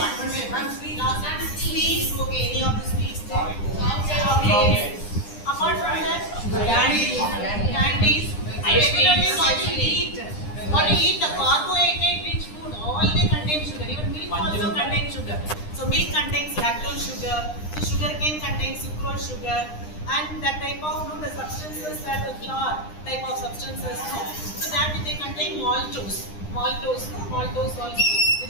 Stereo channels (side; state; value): right; late; 9.9 ms